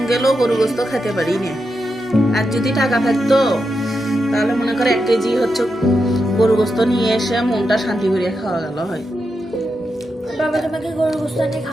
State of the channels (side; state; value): both; normal; correlation 0.86